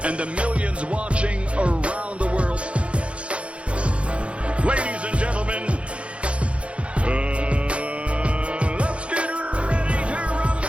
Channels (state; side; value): late; left; 0.060 ms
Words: and the millions watching around the world, ladies and gentlemen, let's get ready to